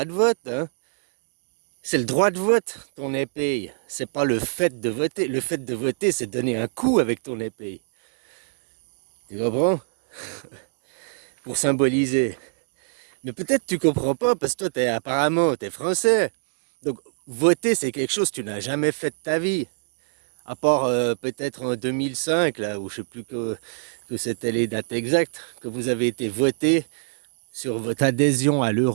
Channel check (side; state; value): left; silent; digital silence